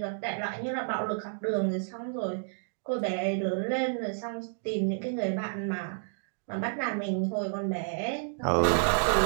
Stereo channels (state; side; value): silent; left; digital silence